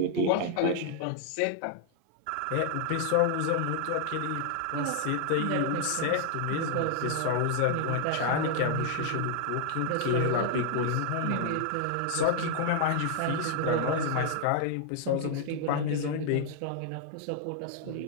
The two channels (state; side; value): different; both; correlation 0.00